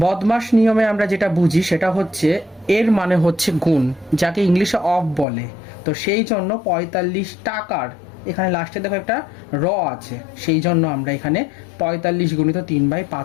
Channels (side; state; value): right; drops out; at 5.2 s